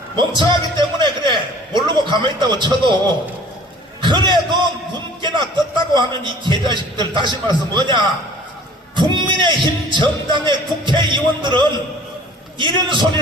멍청하기 때문에 그래 모르고 가만히 있다고 쳐도, 그래도 하나 떴다고 하는 이 개자식들, 다시 말해서 뭐냐, 국민의힘 정당의 국회의원들은 이런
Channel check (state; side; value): normal; both; correlation 0.49